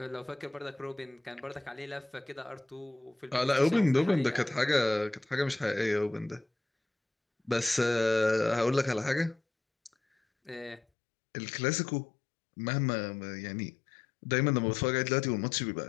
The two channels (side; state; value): right; drops out; at 10.8 s